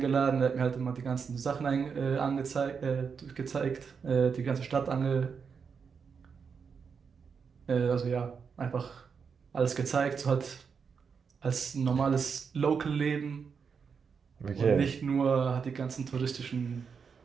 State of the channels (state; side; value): quieter; left; 6.1 dB